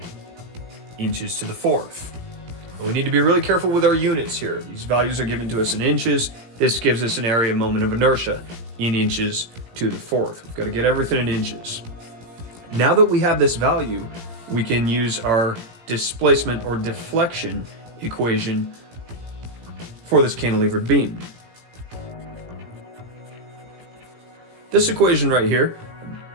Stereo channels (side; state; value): left; late; 18 ms